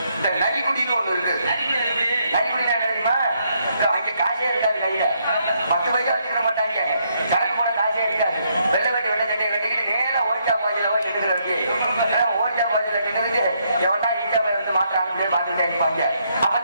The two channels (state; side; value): inverted; both; correlation -0.74